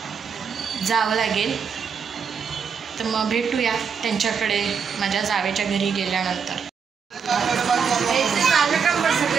जावं लागेल. तर मग भेटूया त्यांच्याकडे माझ्या जावेच्या घरी गेल्यानंतर.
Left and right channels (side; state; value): left; quieter; 6.4 dB